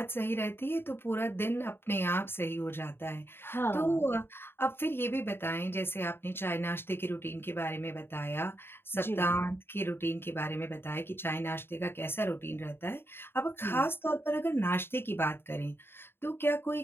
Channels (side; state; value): right; late; 0.11 ms